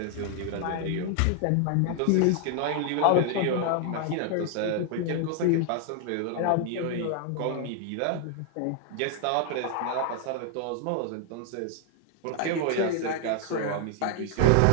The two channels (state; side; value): different; both; correlation 0.00